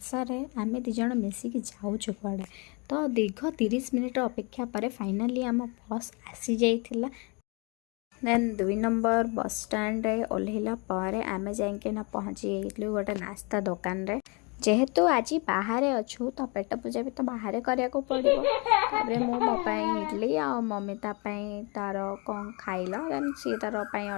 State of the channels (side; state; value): right; quieter; 31.1 dB